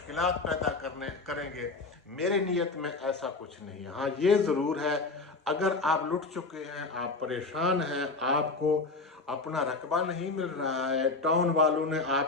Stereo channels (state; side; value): quieter; right; 3.7 dB